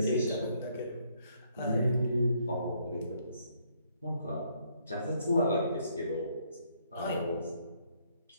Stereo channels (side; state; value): both; inverted; correlation -0.69